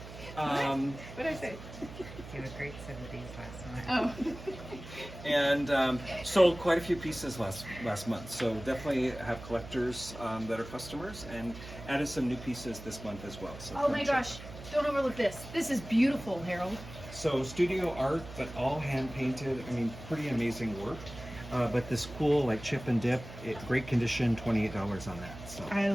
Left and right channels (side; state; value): right; noise; hum, 14 dB below the sound